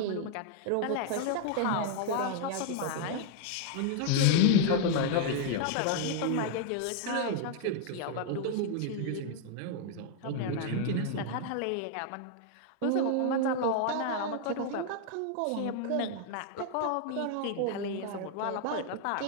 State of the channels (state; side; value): different; both; correlation 0.00